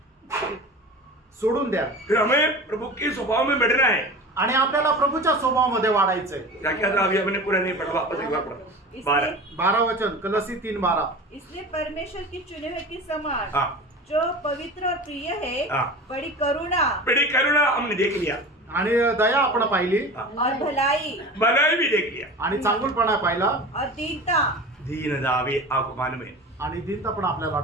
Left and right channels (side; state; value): both; normal; correlation 0.34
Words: सोडून द्या. फिर हमें प्रभु के स्वभाव में बैठना है. आणि आपल्याला प्रभूच्या स्वभावामध्ये वाढायचंय. क्या क्या था अभी हमने पूरा नहीं पढ़ा, वापस एक बार पढ़ा. 12 वचन कलसी 3:12. इसलिए परमेश्वर की चुने हुए के समान हाँ. जो पवित्र और प्रिय है, हाँ. बड़ी करुणा हमने देख लिया. आणि दया आपण पाहिली. और भलाई भी देख लिया. आणि चांगुलपणा पाहिला. और दीनता. दीनता भी आपको मालूम है. आणि दीनता पण आपल्याला